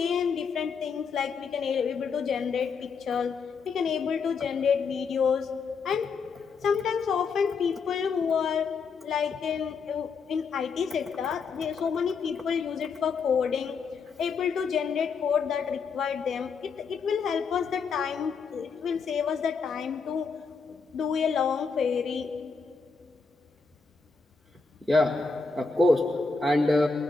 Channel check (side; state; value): right; quieter; 5.1 dB